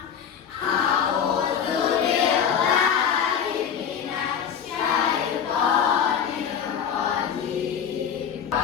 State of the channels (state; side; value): quieter; right; 7.8 dB